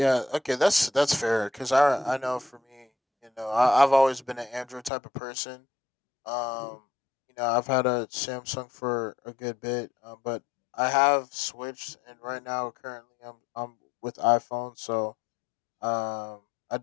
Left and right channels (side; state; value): right; drops out; at 4.9 s